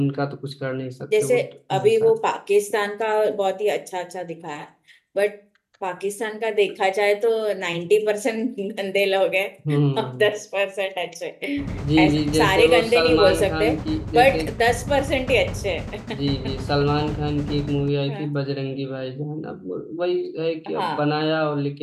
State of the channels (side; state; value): both; identical; correlation 1.00